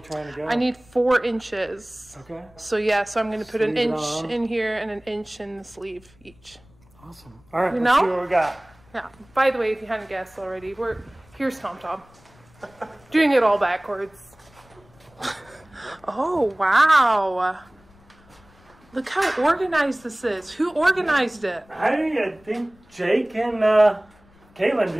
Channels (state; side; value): noise; left; rumble, 28 dB below the sound